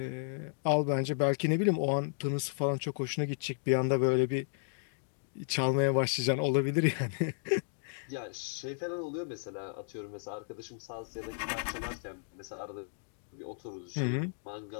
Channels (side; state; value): right; silent; digital silence